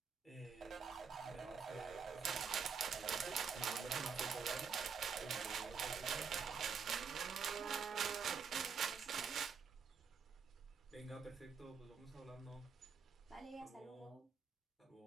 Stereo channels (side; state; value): left; quieter; 6.1 dB